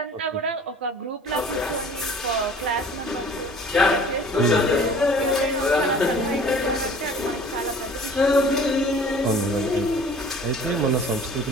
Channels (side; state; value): both; normal; correlation 0.48